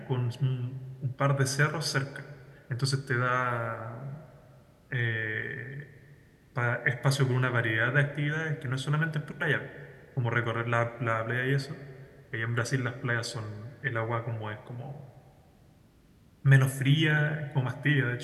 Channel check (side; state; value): both; identical; correlation 1.00